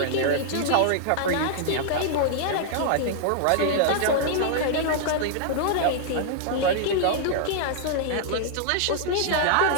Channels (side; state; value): both; different; correlation -0.01